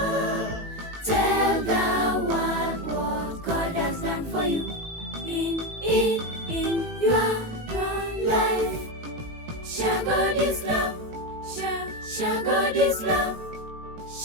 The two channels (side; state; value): left; late; 18 ms